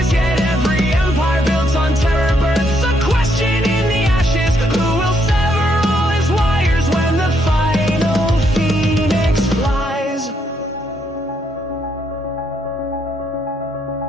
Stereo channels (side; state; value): both; normal; correlation 0.74